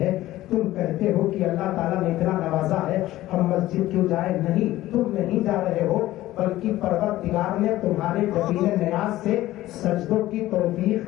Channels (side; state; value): right; quieter; 15.7 dB